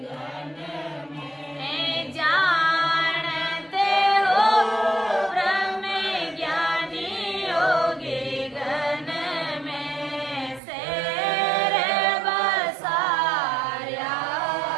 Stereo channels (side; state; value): left; drops out; at 10.6 s